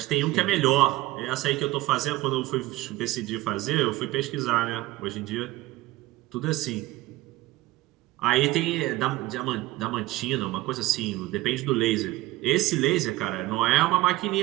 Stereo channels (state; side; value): quieter; left; 17.5 dB